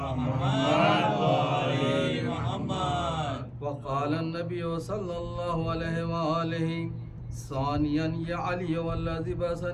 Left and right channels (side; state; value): both; identical; correlation 1.00